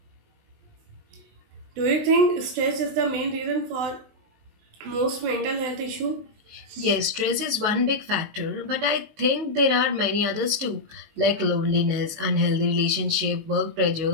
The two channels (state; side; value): late; left; 19 ms